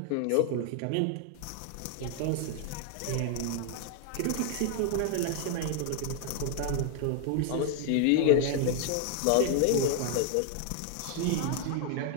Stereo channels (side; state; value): both; different; correlation 0.00